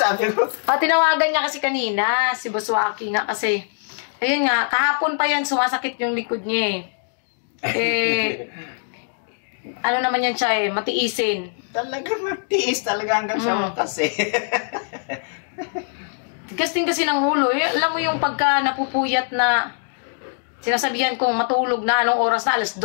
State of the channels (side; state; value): right; silent; digital silence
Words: ko. Tinawagan niya kasi kanina, si Boss Waki nga kasi. Ayun nga, kahapon pa yan, sumasakit yung likod niya ano naman yan siya matiisin. Talaga matiis talaga hanggang sa wakas Tigas din kasi ng ulo. Alam mo yung pagka napupuyat na sinasabihan kong matulog na anong oras na, alas